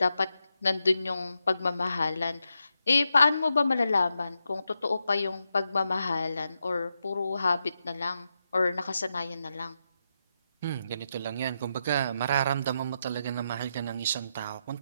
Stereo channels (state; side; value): inverted; both; correlation -0.85